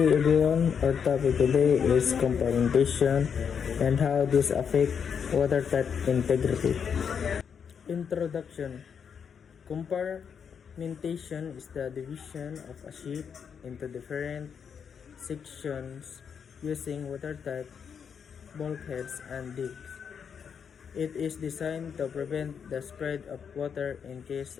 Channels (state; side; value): quieter; right; 7.0 dB